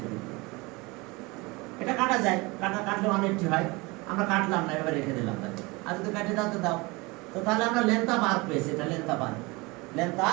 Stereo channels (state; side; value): quieter; left; 24.7 dB